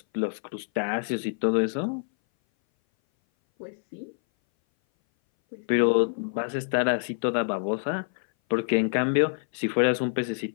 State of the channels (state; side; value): silent; right; 59 dB below the other